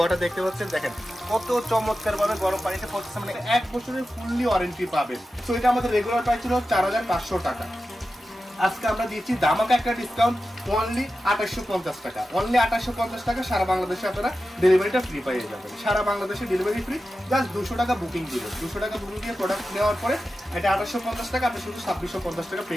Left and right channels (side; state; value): both; normal; correlation 0.92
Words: দেখতে পাচ্ছেন, দেখেন কত চমৎকার ভাবে গরম পানিটা পড়তেছে। মানে 1 বছরের ফুললি ওয়ারেন্টি পাবেন। তো এটা আমাদের রেগুলার প্রাইস ছিল 4500 টাকা। আজকে আমরা দিচ্ছি ধামাকা একটা ডিসকাউন্ট, অনলি 2850 টাকা। অনলি 2850 টাকা সারা বাংলাদেশে আপনারা ডেলিভারিটা ফ্রি পেয়ে যাবেন। সারা বাংলাদেশে ডেলিভারি ফ্রি, জাস্ট 200 টাকা বুকিং দিবেন। 200 টাকা বুকিং দিয়ে প্রোডাক্ট নেওয়ার পরে এটা 2850 টাকা, আপনি শুধু 2650 টাকা পে